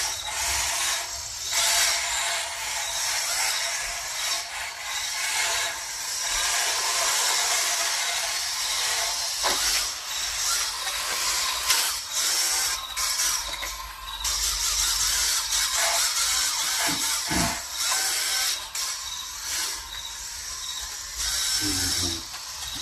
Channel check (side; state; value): both; identical; correlation 1.00